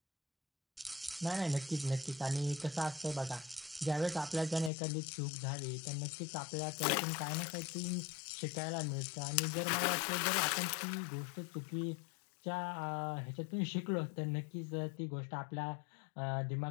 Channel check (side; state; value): right; drops out; at 4.7 s